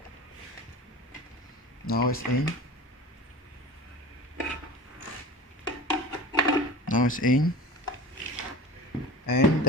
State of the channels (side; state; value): both; normal; correlation 0.37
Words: Now it's in. Now it's in. And